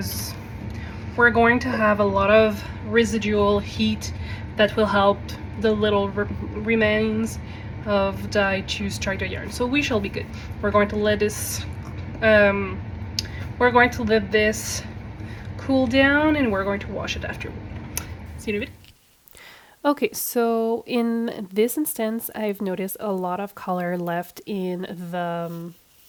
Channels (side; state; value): both; identical; correlation 1.00